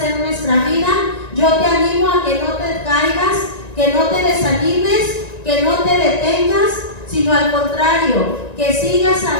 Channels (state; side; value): late; right; 1.9 ms